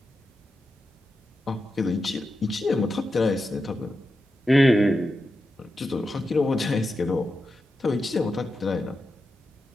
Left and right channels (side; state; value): both; normal; correlation 0.89